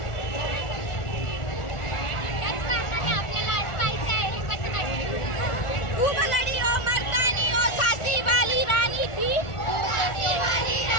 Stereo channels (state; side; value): late; right; 1.4 ms